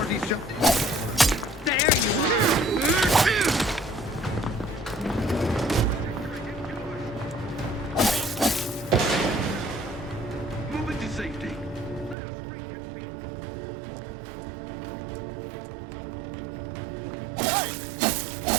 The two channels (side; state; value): left; drops out; at 12.2 s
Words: jump. There you are! Moving to safety.